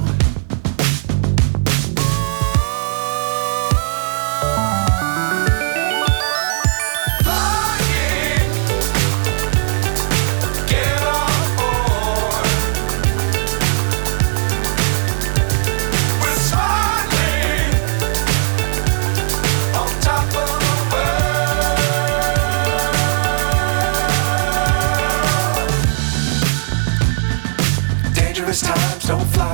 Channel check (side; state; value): left; silent; digital silence